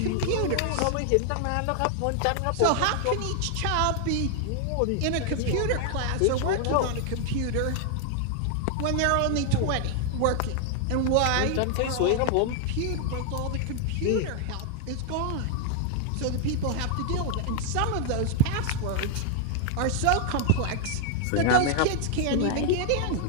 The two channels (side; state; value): both; different; correlation 0.00